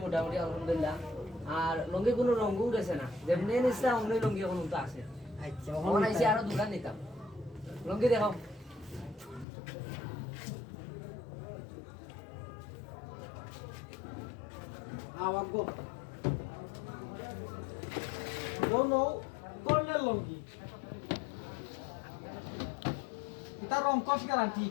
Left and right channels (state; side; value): drops out; right; at 9.5 s